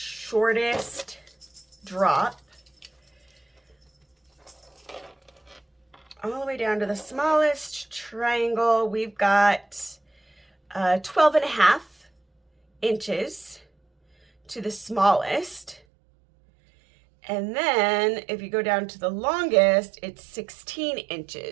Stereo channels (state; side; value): drops out; left; at 15.8 s